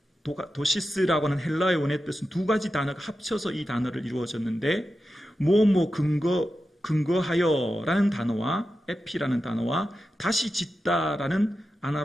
아페노루도시스라고 하는 헬라의 원어의 뜻은 두 가지 단어가 합쳐서 이 단어를 이루어졌는데 근거하여라는 단어와 에피라는 단어와 다시 짓다라는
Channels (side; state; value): both; normal; correlation 0.91